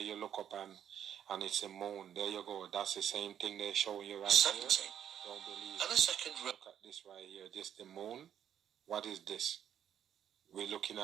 look up and it's a moon. There you go. That's the same thing they're showing you right 17. here. Don't believe and it. a second Look at this right here. This the moon. What is this? We're looking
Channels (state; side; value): quieter; left; 9.6 dB